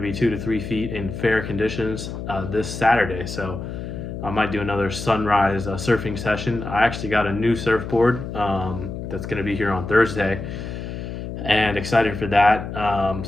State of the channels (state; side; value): noise; left; hum, 7 dB below the sound